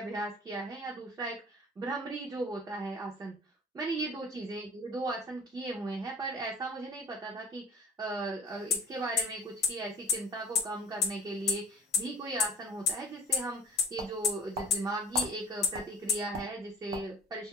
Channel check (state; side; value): normal; both; correlation 0.44